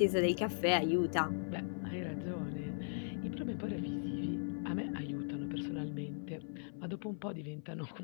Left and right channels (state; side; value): silent; right; 52 dB below the other